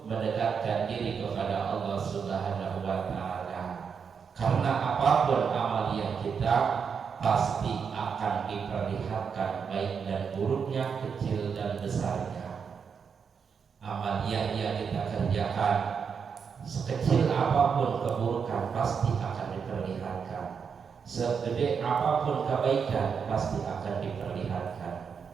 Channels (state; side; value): quieter; left; 6.4 dB